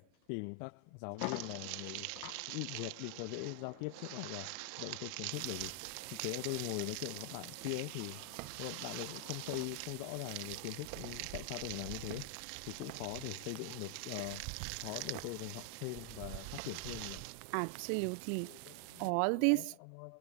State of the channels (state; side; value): different; both; correlation 0.00